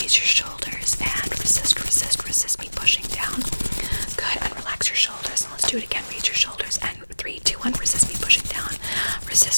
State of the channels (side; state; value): both; inverted; correlation -1.00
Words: your shoulders and resist me pushing down. Good, and relax your shoulders. And let's do it again. Raise your shoulders and 3, 2, 1, resist me pushing down.